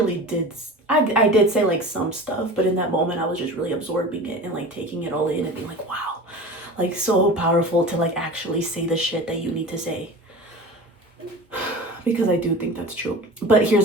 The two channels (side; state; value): both; normal; correlation 0.35